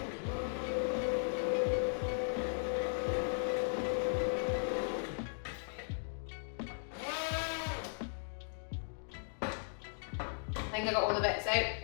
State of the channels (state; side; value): silent; right; digital silence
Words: I think I got all the bits out.